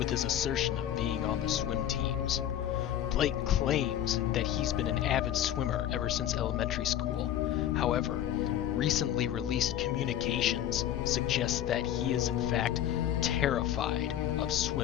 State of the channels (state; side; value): quieter; right; 11.1 dB